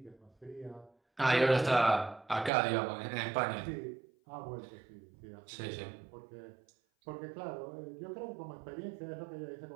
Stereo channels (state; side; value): drops out; left; at 2.5 s